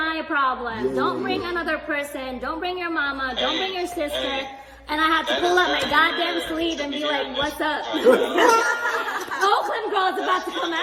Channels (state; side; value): identical; both; correlation 1.00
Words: problem. Yeah, Don't yeah, bring yeah. another person. Don't bring your mama. Don't bring your sister. Hey. And I have to That pull is up my very goddamn rare sleeve to and be be like, hearing "What's this. up?" Oakland girl's about to come